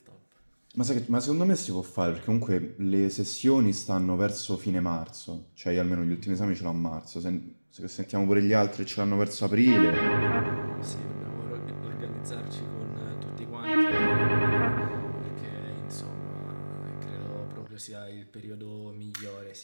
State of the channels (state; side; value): inverted; both; correlation -1.00